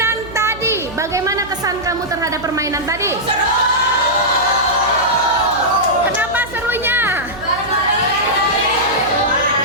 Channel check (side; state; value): right; noise; hum, 16 dB below the sound